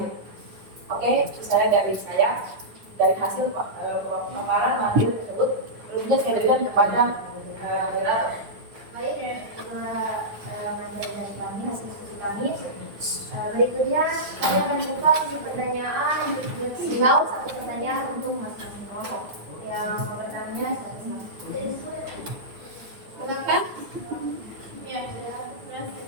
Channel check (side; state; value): left; late; 9.6 ms